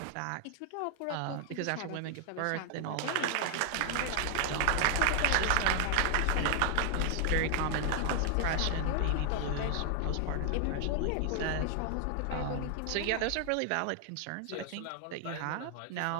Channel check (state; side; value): different; both; correlation 0.00